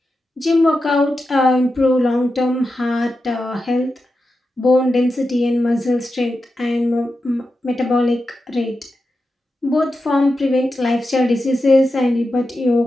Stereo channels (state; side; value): normal; both; correlation 0.90